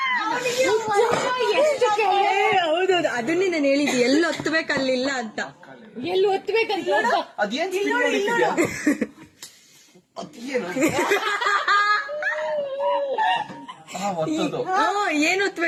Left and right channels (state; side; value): identical; both; correlation 1.00